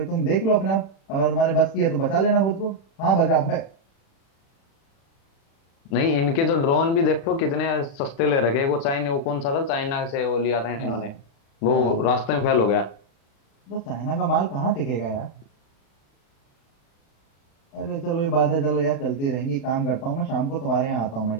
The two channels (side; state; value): right; late; 36 ms